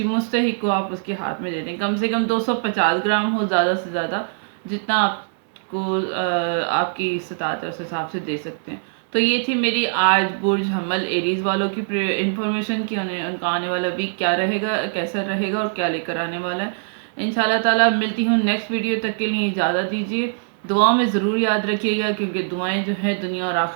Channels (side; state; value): left; silent; 64 dB below the other